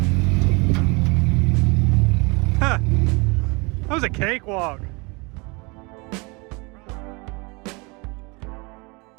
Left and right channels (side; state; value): left; quieter; 28.2 dB